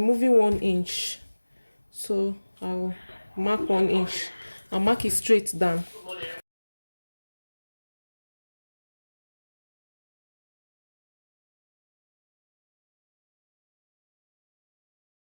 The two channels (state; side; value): inverted; both; correlation -1.00